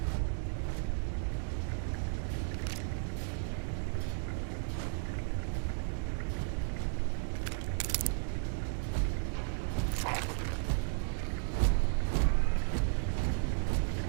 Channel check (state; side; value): silent; left; digital silence